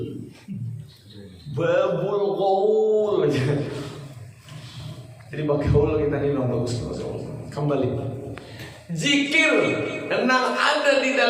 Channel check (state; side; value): identical; both; correlation 1.00